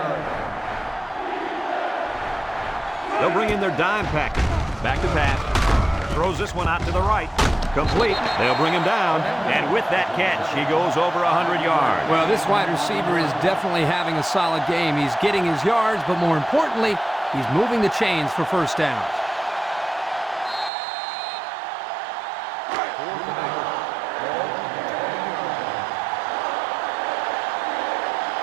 They'll bring in their dime package. Back to pass. Throws this one out to the right. Complete. They'll bring him down. And with that catch, he goes over 100 yards. Well, this wide receiver is definitely having a solid game. He's getting his yards, but more importantly, he's moving the chains for first downs.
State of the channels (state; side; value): drops out; left; at 20.7 s